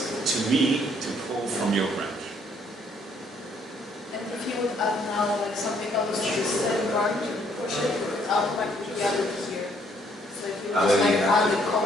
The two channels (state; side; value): normal; both; correlation 0.66